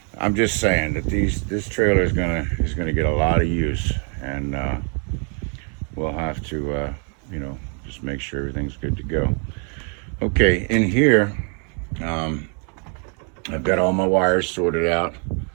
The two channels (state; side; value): quieter; left; 39.7 dB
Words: I'm just saying that this trailer is gonna get a lot of use, and we'll have to, you know, just make sure everything's good to go. Okay, in here, I've got all my wires sorted out,